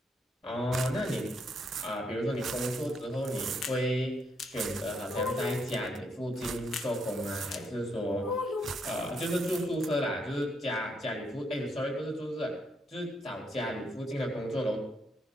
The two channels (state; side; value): normal; both; correlation 0.75